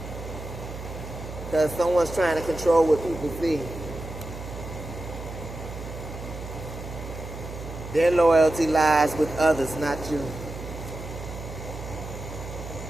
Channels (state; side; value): noise; right; hum, 10 dB below the sound